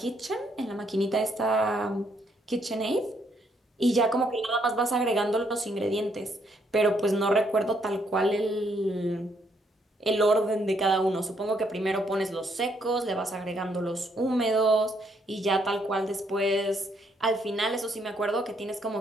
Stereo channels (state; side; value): normal; both; correlation 0.72